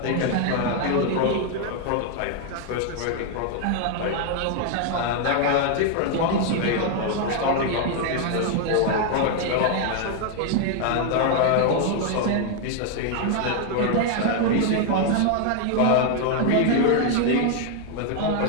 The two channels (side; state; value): both; different; correlation 0.00